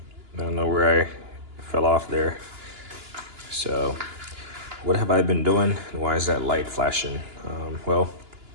don't know where I fell off there. So what have I been doing, and why is that light flashing? Well,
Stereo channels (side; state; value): left; late; 2.9 ms